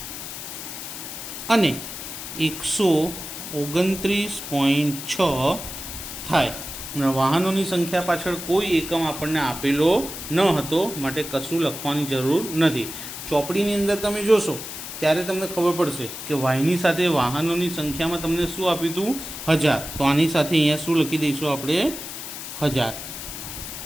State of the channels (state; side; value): noise; left; hiss, 9 dB below the sound